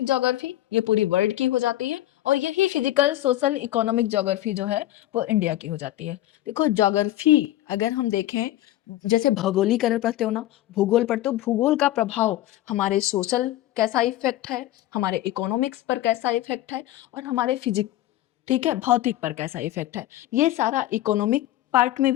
ज्योग्राफी ये पूरी वर्ल्ड की हो जाती है, और यही फिजिकल सोशल इकोनॉमिक ज्योग्राफी जो है वो इंडिया की हो जाती है। देखो ज्योग्राफी अगर हम देखें, जैसे भौगोलिकरण पढ़ते हो ना, भूगोल पढ़ते हो, भूगोल का प्रभाव हमारे सोशल कैसा इफेक्ट है, हमारे इकोनॉमिक्स पर कैसा इफेक्ट है, और हमारे फिजिक, ठीक है, भौतिक पर कैसा इफेक्ट है, ये सारा इकोनॉमिक पार्ट में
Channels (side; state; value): right; quieter; 14.6 dB